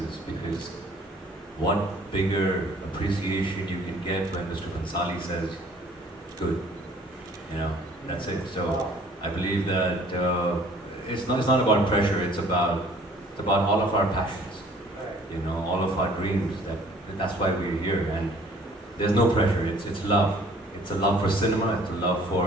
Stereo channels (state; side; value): normal; both; correlation 0.55